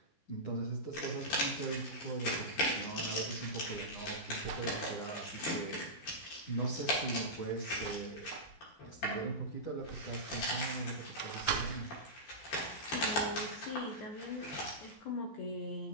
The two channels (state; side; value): late; right; 13 ms